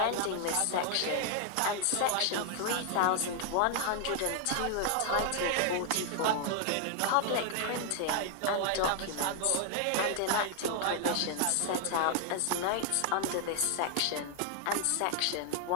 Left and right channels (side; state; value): both; different; correlation 0.00